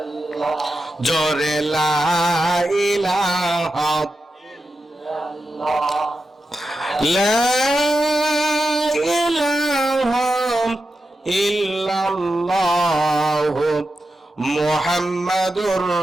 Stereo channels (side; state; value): both; normal; correlation 0.90